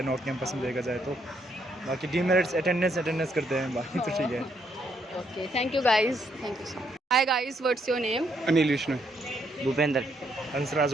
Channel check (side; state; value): both; normal; correlation 0.73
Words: नॉर्थ कैंपस में देखा जाए तो, बाकी डीमेरिट्स अटेंडेंस करते हैं, बाकी तो ठीक है। Okay, thank you guys. Thank you so much. Hi guys, what's your name? Anil Vishnu. Bhupendra. Hansraj